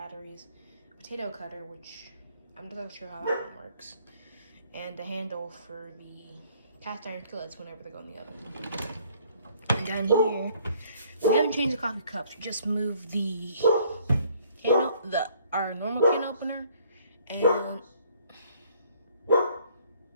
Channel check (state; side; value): inverted; both; correlation -0.61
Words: potato cutter, which I'm not sure how that one works, and a handle for the cast iron skillets whenever they go in the oven. And down here, we haven't changed the coffee cups. We just moved the our normal can opener and